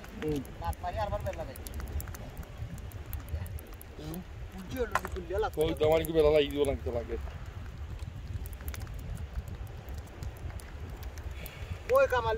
রাত মারি আরবার বেলা লাগাই পুজি হলো কুলিয়া লাগতো কই তোমার কি বেলা লাগি দিও লাগতে লাগে ওই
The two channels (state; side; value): identical; both; correlation 1.00